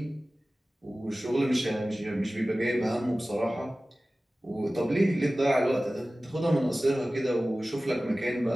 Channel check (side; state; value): both; normal; correlation 0.97